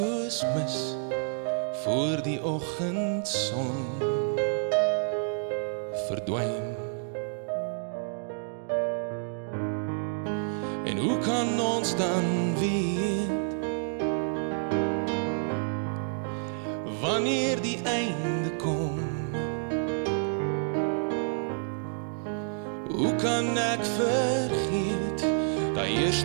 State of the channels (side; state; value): left; silent; digital silence